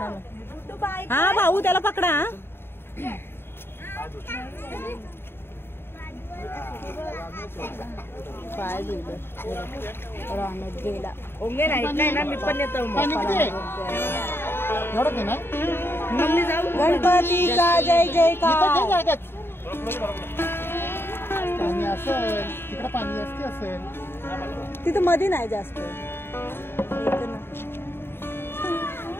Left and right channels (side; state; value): right; late; 0.11 ms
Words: हा भाऊ त्याला पकडा. पाय राहण्यात गेला. ओंगे नाही ना मी पण येतो. मग जाऊ. गणपतीचा जय जयकार. पाणी असेल तिकडे, पाणी असते असेल तिथं मध्ये नाही जास्त.